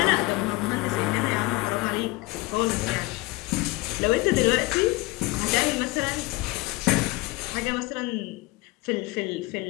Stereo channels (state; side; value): quieter; right; 21.6 dB